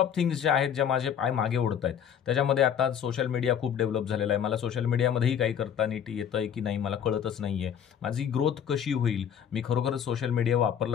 थिंग्स ज्या आहेत, ज्या माझे पाय मागे ओढत आहेत. त्याच्यामध्ये आता सोशल मीडिया खूप डेव्हलप झालेला आहे. मला सोशल मीडियामध्येही काही करता नीट येतंय की नाही मला कळतच नाहीये. माझी ग्रोथ कशी होईल, मी खरोखरच सोशल मीडिया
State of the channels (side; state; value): right; quieter; 8.6 dB